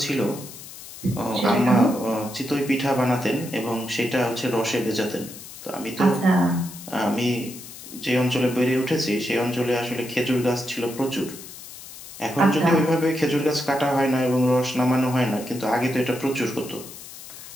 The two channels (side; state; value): left; noise; hiss, 15 dB below the sound